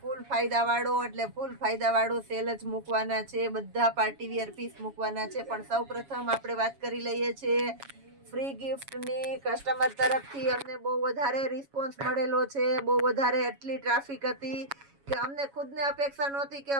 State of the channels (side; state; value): left; late; 7.2 ms